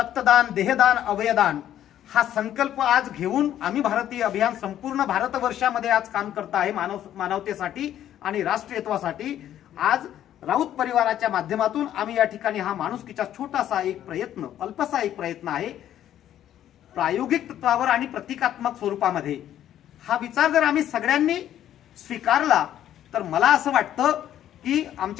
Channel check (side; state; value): right; quieter; 11.4 dB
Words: देहदान, अवयदान हा संकल्प आज घेऊन आम्ही भारतीय अभियान संपूर्ण भारतवर्षामध्ये आज काम करत आहे मानवतेसाठी आणि राष्ट्रीयत्वासाठी। आज राऊत परिवाराच्या माध्यमातून आम्ही या ठिकाणी हा माणुसकीचा छोटासा एक प्रयत्न, अल्पसा एक प्रयत्न आहे, प्रायोगिक तत्वावर आणि प्रतिकात्मक स्वरूपामध्ये हा विचार जर आम्ही सगळ्यांनी स्वीकारला तर मला असं वाटतं की